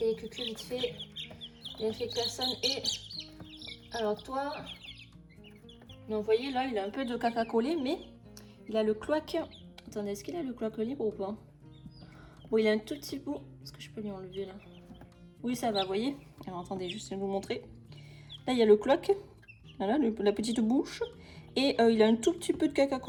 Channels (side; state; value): both; identical; correlation 1.00